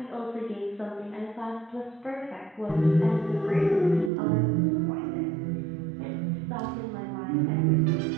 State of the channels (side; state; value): left; drops out; at 4.1 s